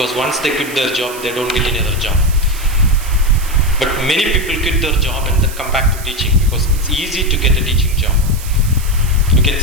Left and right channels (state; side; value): noise; right; hiss, 14 dB below the sound